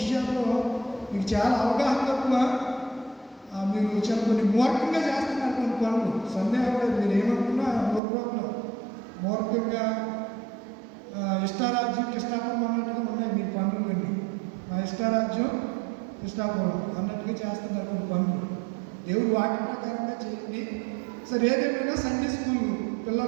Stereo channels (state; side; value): drops out; left; at 8.0 s